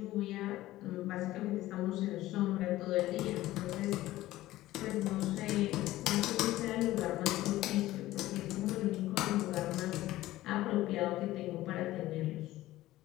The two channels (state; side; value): quieter; right; 16.1 dB